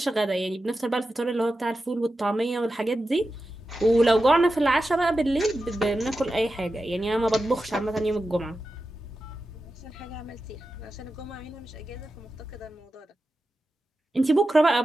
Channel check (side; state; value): both; normal; correlation 0.92